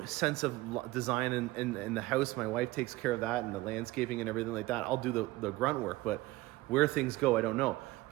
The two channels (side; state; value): left; quieter; 19.0 dB